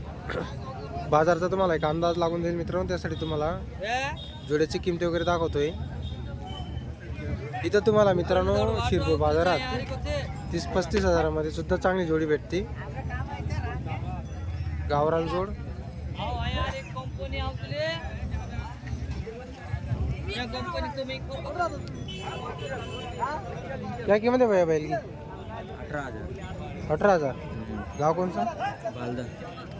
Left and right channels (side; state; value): both; identical; correlation 1.00